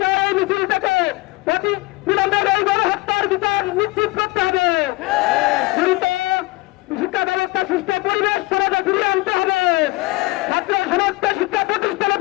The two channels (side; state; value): right; quieter; 21.7 dB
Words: চাই এই মিছিল থেকে বিলম্বের এই গণহত্যার বিচার নিশ্চিত করতে হবে। শিক্ষা ব্যবস্থা সুস্থ পরিবেশ সমাজে ফিরিয়ে আনতে হবে। ছাত্র সমাজকে শিক্ষা প্রতিষ্ঠানে